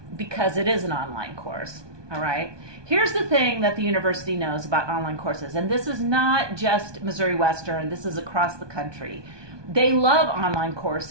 because it is an online course. All right. Here's the thing that the university knows about online courses, and this is not just Missouri Western, this is across the country. They love online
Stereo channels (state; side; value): late; left; 1.2 ms